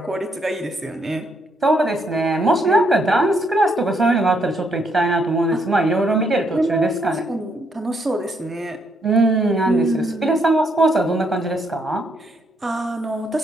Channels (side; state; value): both; normal; correlation 0.74